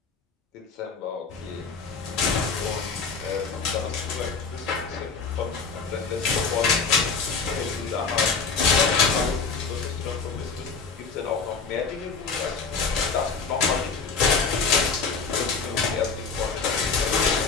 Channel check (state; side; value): quieter; right; 4.9 dB